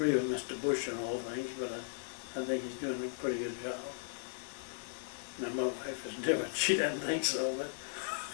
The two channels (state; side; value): silent; right; 53 dB below the other